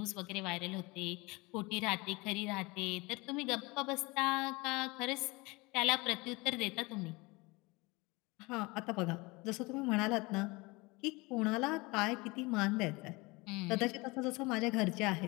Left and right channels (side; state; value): right; quieter; 24.6 dB